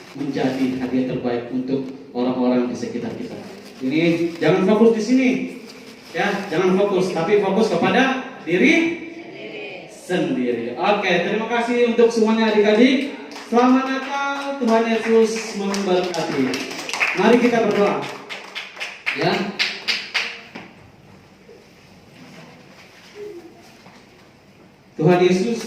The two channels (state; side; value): identical; both; correlation 1.00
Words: menjadi hadiah terbaik untuk orang-orang di sekitar kita. Ini jangan fokus di sini. Ya, jangan fokus, tapi fokus kepada diri sendiri. Oke, terima kasih untuk semuanya adik-adik. Selamat Natal, Tuhan Yesus memberkati. Mari kita berdoa. Ya. Tuhan Yesus,